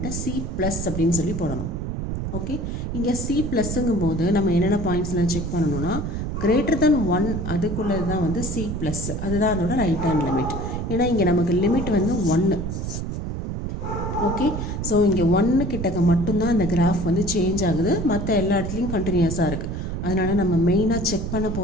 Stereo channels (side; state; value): right; noise; rumble, 4 dB below the sound